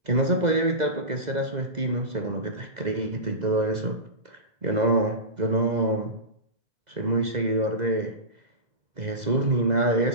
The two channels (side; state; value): left; late; 2.0 ms